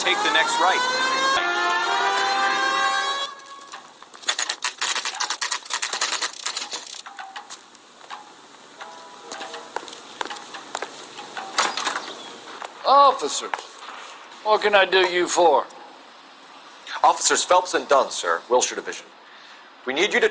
the next right. Officers, what can I do you for? Officers Phelps and Dunn, sir, Wilshire Division. We need you to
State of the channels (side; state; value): both; identical; correlation 1.00